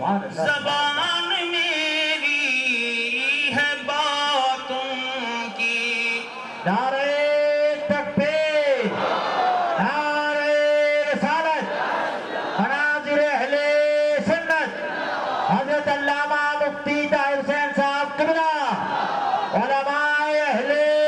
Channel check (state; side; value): identical; both; correlation 1.00